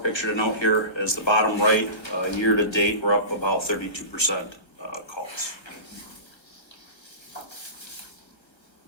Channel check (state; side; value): late; right; 1.3 ms